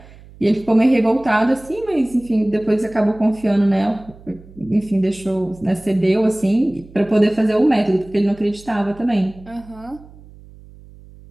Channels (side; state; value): right; noise; hum, 22 dB below the sound